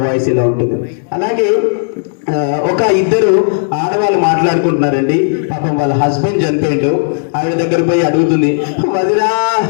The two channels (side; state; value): right; silent; digital silence